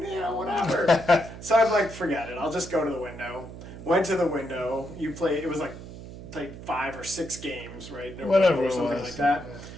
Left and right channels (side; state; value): right; noise; hum, 13 dB below the sound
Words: So I'm like, forget it. I'll just go to the window. Went to the window. You play. It was like played 5 or 6 games, right? In a row Whatever or it something was. like that. Yeah.